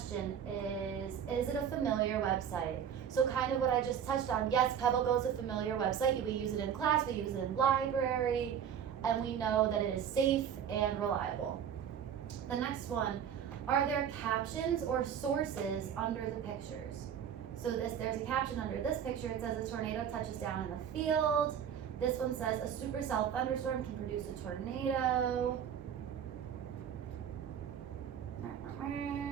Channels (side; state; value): left; quieter; 8.6 dB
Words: is it a familiar website? So kind of what I just touched on. Yes, PebbleGo is a familiar website. We use it in class, we use it in library, and we know that it is safe and reliable. The next one, are there captions or sources under the pictures? So there's a caption under this picture. It says a tornado touches down in a field. This one says a supercell thunderstorm can produce a tornado.